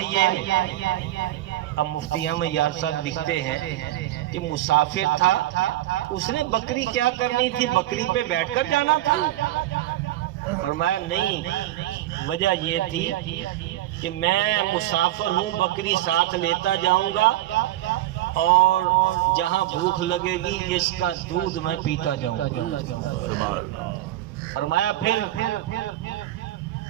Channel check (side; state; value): left; quieter; 14.9 dB